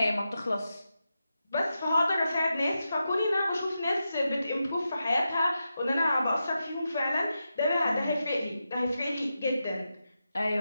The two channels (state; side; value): inverted; both; correlation -0.89